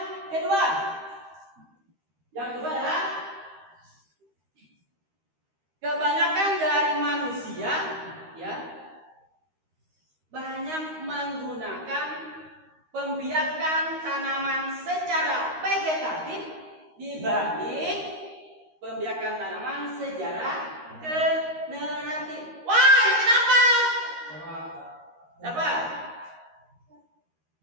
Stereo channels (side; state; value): left; late; 13 ms